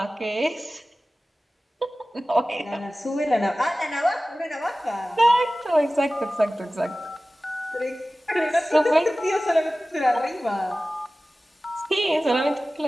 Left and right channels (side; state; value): both; normal; correlation 0.97